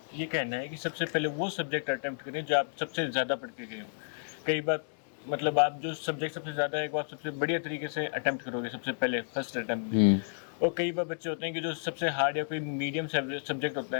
ये कहना है कि सबसे पहले वो सब्जेक्ट अटेम्प्ट करें जो आप सबसे ज़्यादा पढ़ के गए हो। कई बार मतलब आप जो सब्जेक्ट सबसे ज़्यादा है वो आप सबसे बढ़िया तरीके से अटेम्प्ट करोगे सबसे पहले फर्स्ट अटेम्प्ट में। और कई बार बच्चे होते हैं कि जो सबसे हार्ड या कोई मीडियम सब्जेक्ट होता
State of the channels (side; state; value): right; silent; 57 dB below the other